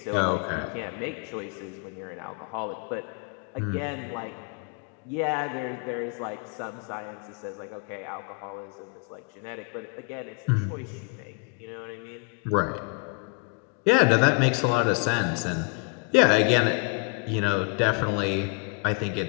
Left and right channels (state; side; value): quieter; right; 33.5 dB